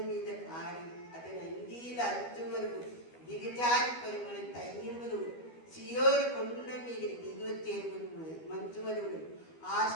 మీద కారి అతని అంగీల అంచు వరకు దిగజారి పరిమళ తైన్యములు సియోరు కొండ మీద దిగొచ్చే మంచు వరువులు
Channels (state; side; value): late; right; 12 ms